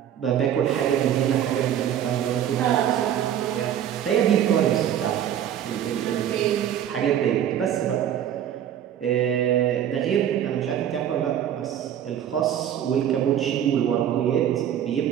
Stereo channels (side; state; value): left; quieter; 10.1 dB